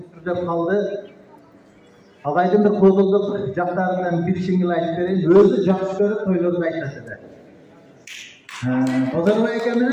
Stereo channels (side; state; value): both; identical; correlation 1.00